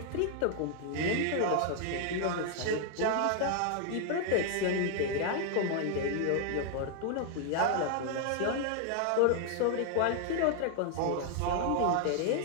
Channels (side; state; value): both; different; correlation 0.00